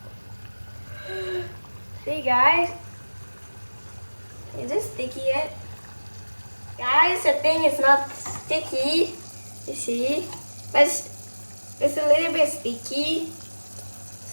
See guys, is it sticky yet? Guys, I think it's not sticky. You see, but It's a little bit sticky.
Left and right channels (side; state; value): both; inverted; correlation -1.00